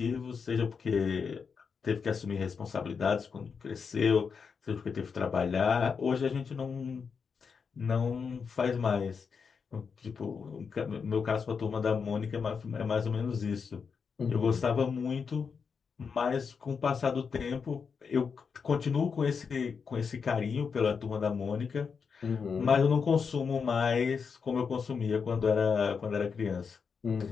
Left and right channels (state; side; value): quieter; right; 5.8 dB